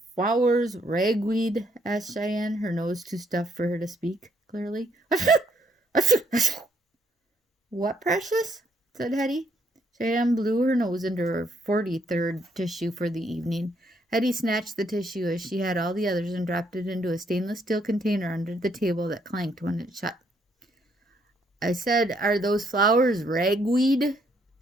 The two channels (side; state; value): both; normal; correlation 0.71